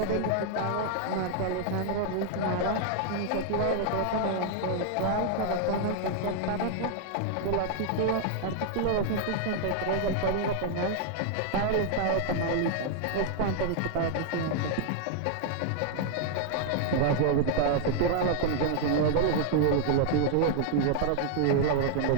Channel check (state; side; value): different; both; correlation 0.00